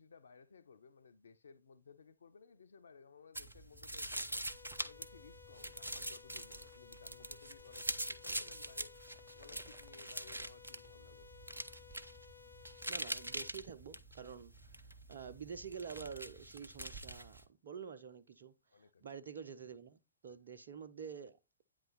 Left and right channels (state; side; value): inverted; both; correlation -0.72